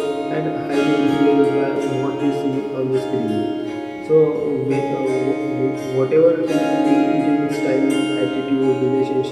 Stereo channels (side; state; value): both; identical; correlation 1.00